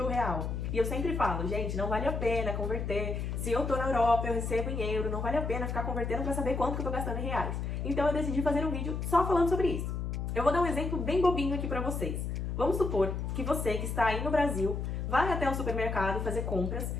real. E eu sempre falo, gente, não vale a pena converter. Se eu tô na Europa, eu recebo em euro, não vale a pena ficar convertendo pra saber quanto que eu tô gastando em reais. Então eu decidi fazer um vídeo só falando sobre isso. Eu vou dar um exemplo bem bobinho aqui pra vocês. Vamos supor que você que está aí no Brasil vai até o supermercado fazer compras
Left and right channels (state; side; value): noise; left; hum, 3 dB below the sound